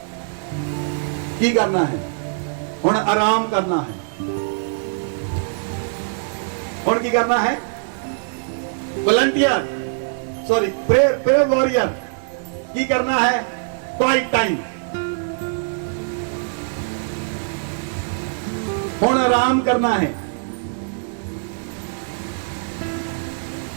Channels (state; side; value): silent; left; digital silence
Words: की करना है? हुण आराम करना है। हुण की करना है? वॉलंटियर, सॉरी प्रेयर वॉरियर की करना है? Quiet time. हुण आराम करना है।